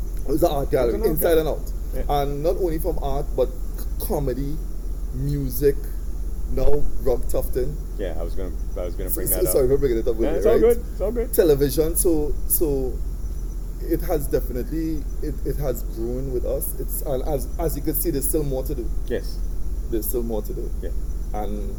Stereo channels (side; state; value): both; identical; correlation 1.00